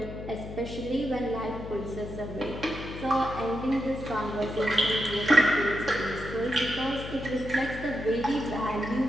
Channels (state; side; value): noise; left; hum, 10 dB below the sound